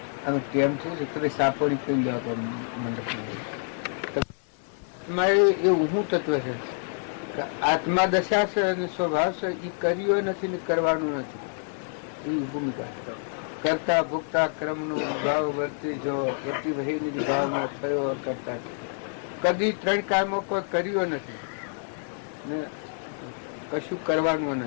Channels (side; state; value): right; silent; 60 dB below the other